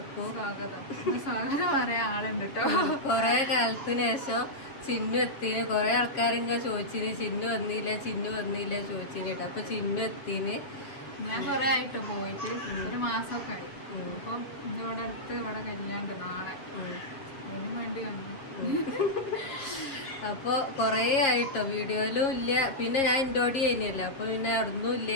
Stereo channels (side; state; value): right; late; 7.4 ms